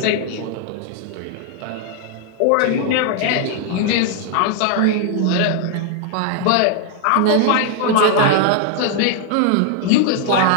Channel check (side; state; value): both; different; correlation 0.00